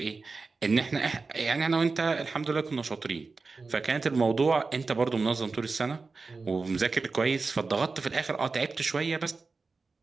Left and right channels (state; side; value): quieter; left; 4.1 dB